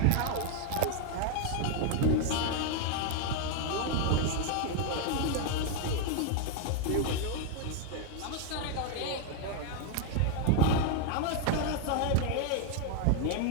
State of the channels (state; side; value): different; both; correlation 0.00